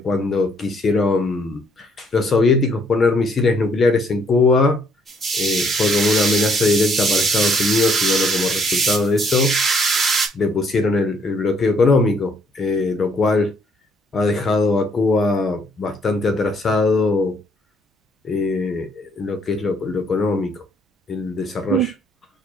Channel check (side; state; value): both; normal; correlation 0.66